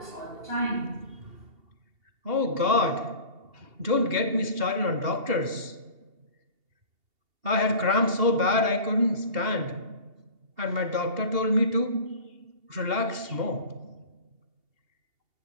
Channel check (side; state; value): left; late; 2.8 ms